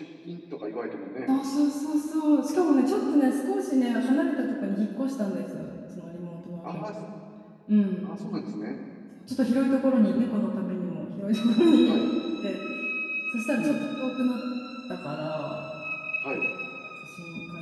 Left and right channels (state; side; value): identical; both; correlation 1.00